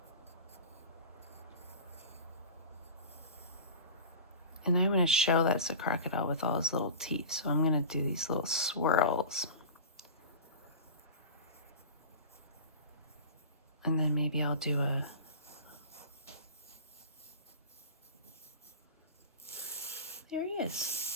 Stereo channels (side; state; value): both; inverted; correlation -0.33